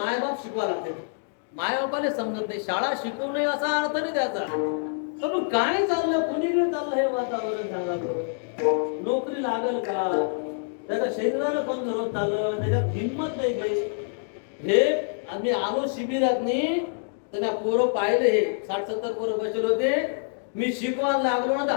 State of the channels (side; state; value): right; silent; digital silence